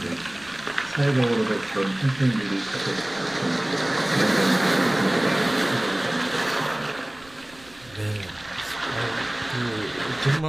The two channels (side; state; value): right; noise; rumble, 25 dB below the sound